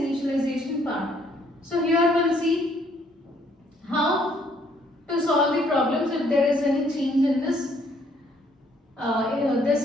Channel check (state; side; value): normal; both; correlation 0.66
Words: part. So here we'll see how to solve the problems if there is any change in this